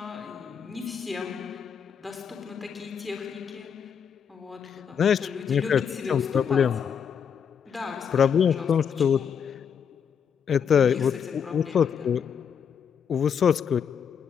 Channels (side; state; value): right; quieter; 7.4 dB